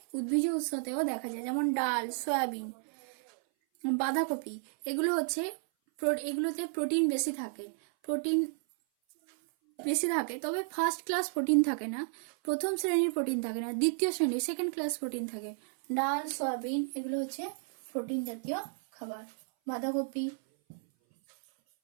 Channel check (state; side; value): silent; left; 56 dB below the other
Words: উদ্ভিজ উৎসতেও দেখা যায়, যেমন ডাল, সয়াবিন, বাঁধাকপি, এগুলোতে প্রোটিন বেশি থাকে, তবে ফার্স্ট ক্লাস প্রোটিন থাকে না, প্রথম শ্রেণীর প্রোটিন থাকে না, দ্বিতীয় শ্রেণীর সেকেন্ড ক্লাস প্রোটিন থাকে। ডাল, সয়াবিন এগুলো হচ্ছে প্রোটিন জাতীয় খাবার। বাঁধাকপি।